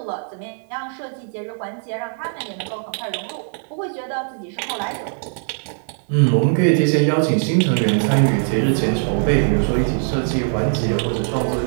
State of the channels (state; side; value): silent; left; 61 dB below the other